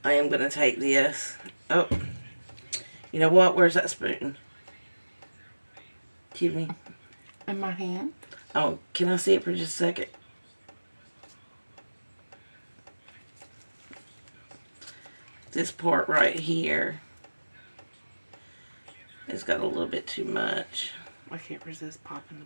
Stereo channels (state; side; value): inverted; both; correlation -1.00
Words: I am going to take this. Oh, you know what? Where's that spoon? Give me. In my hand. Oh, can I see it for just a second? This part right here. It's got a little bit too much. I can't resist popping the